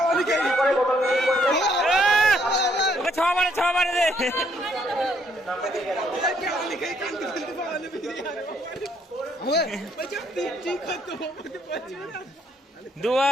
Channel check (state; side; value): normal; both; correlation 0.69